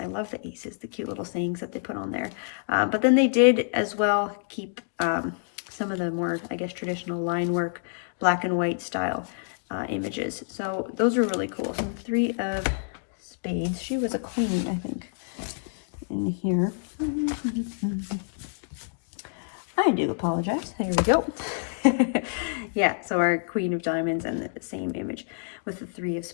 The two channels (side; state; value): right; silent; digital silence